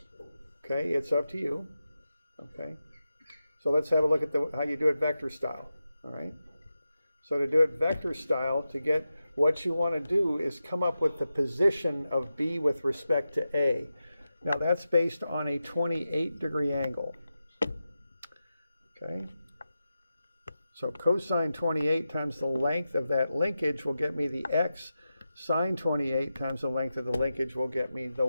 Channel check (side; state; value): both; inverted; correlation -0.91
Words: Okay, it's up to you. Okay. So let's have a look at how you do it vector style. All right. So to do it vector style, to get what you want to do is come up with the position of B with respect to A. Now that's based on a 28-degree angle. Okay. So cosine 28 times the length of that linkage will get me the X. Sine 28 times the length of the linkage will get me the